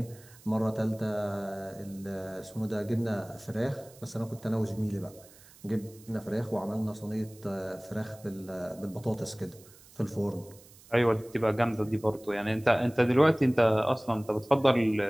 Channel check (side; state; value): right; noise; hiss, 24 dB below the sound